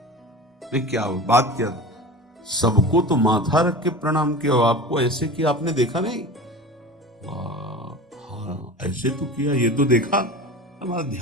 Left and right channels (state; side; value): normal; both; correlation 0.33